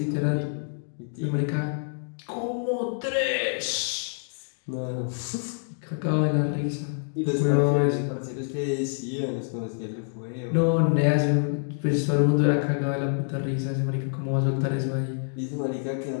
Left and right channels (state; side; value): silent; right; 60 dB below the other